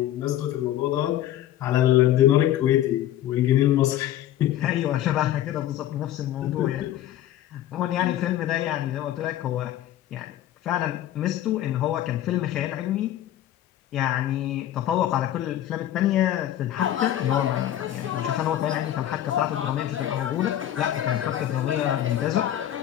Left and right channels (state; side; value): quieter; right; 12.4 dB